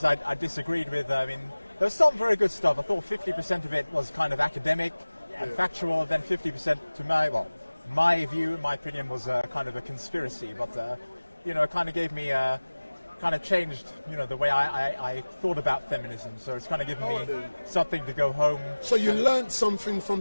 I disagreed with. There was some very good stuff. I thought 50% of it was kind of academic and factual, then 50% to my view, my opinion, was kind of a conspiracy, but it kind of gave me kind of changed the way I thought about feminism, so it's kind of given me something to go home. So you learnt something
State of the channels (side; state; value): both; inverted; correlation -1.00